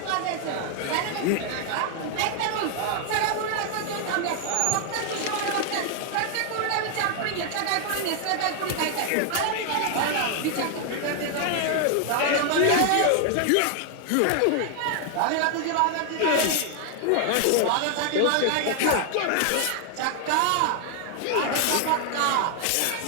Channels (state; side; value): different; both; correlation 0.00